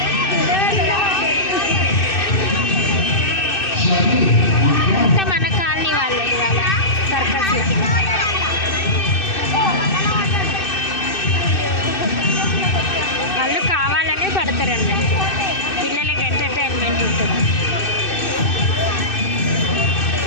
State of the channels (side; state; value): right; late; 2.6 ms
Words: అంతా మన కాలనీ వాళ్ళే ఇవాళ సర్కస్. వాళ్ళు కావాలనే పడతారు అన్నట్టు, పిల్లలకి ఎంటర్టైన్మెంట్ ఉంటుంది.